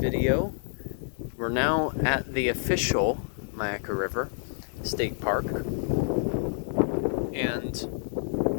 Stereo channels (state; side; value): silent; right; digital silence